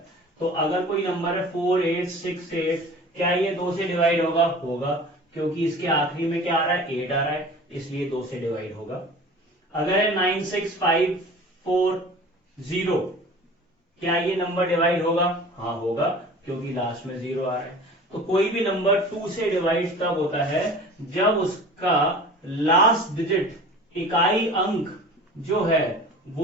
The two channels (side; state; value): both; normal; correlation 0.41